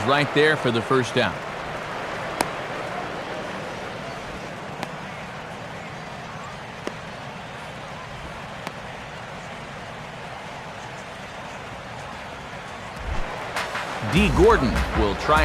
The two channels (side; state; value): both; identical; correlation 1.00